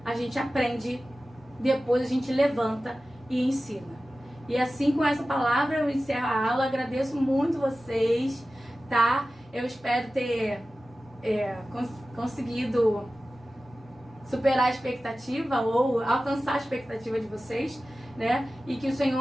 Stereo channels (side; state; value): both; normal; correlation 0.95